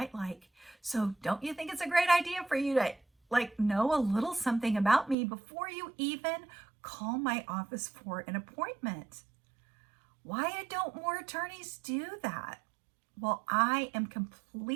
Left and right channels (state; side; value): drops out; left; at 5.2 s